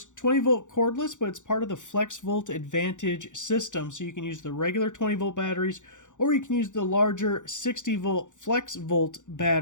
20-volt cordless, but it's part of the FLEXVOLT Advantage system, so you can use the regular 20-volt batteries or you can use the larger 60-volt FLEXVOLT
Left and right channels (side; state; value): right; late; 0.86 ms